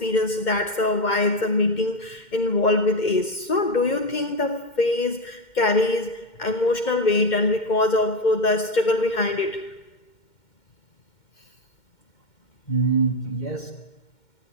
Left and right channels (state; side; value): late; right; 2.1 ms